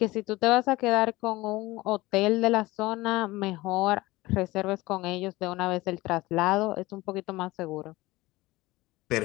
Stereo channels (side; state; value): right; quieter; 19.9 dB